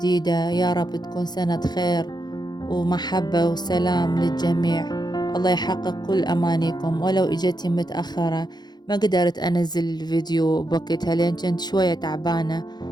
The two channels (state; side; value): late; right; 0.20 ms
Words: يا رب تكون سنة خير ومحبة وسلام للجميع. الله يحقق كل أمانيكم. ولو إجتي متأخرة ما قدرت أنزل الفيديو بوقتها لأن كنت شوية تعبانة،